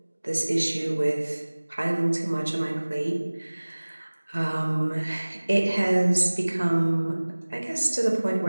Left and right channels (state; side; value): inverted; both; correlation -1.00